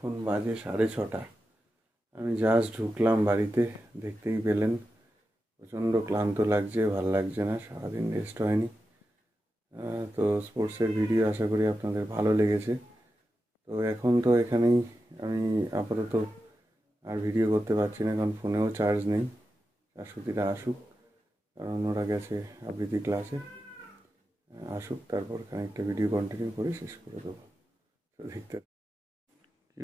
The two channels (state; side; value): normal; both; correlation 0.90